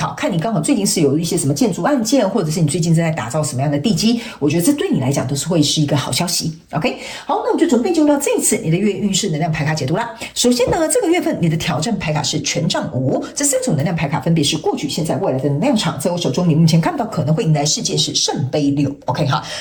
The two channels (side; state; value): both; identical; correlation 1.00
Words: 看你刚好最近是有一些什么建筑案件，或者是你最近正在打造什么样的地基，我觉得这对你来讲都是会是一个好消息 ，OK。好，那我们就准备进入到这一次你的月运势能量牌卡解读啦。首先呢，这个月份你的挑战牌卡是权杖5，这3种能量牌卡分别是过去、现在、未来的能量场，在我手中你目前看到可能会迎来事件是圣杯6 ，OK 哈。